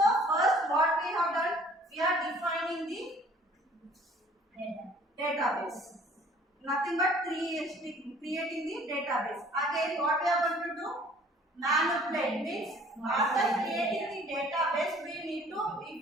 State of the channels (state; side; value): normal; both; correlation 0.54